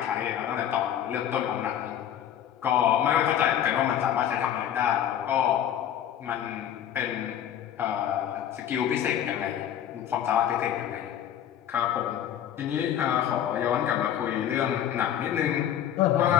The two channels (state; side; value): quieter; right; 10.4 dB